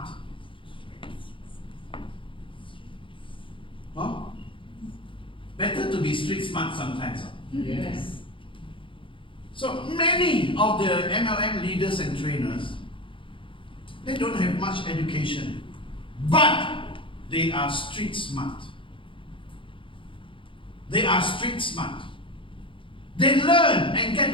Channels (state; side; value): late; right; 0.25 ms